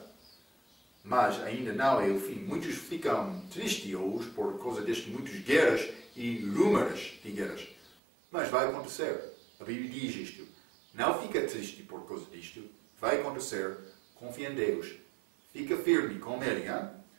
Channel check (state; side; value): drops out; left; at 8.0 s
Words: Mas ainda não é o fim. Muitos ficam tristes hoje por causa destas muitas guerras e rumores de guerras. Mas vai acontecer. A Bíblia diz isto. Não fica triste por causa disto. Vai acontecer. Confia em Deus. Fica firme com Ele.